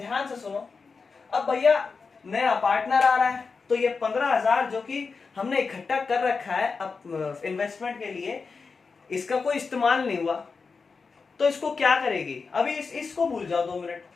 से सुनो, अब भैया नया पार्टनर आ रहा है, तो ये 15,000 जो कि हमने इकट्ठा कर रखा है अब इन्वेस्टमेंट के लिए, इसका कोई इस्तेमाल नहीं हुआ, तो इसको क्या करेगी? अभी इसको भूल जाओ 2 मिनट,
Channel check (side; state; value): right; quieter; 4.8 dB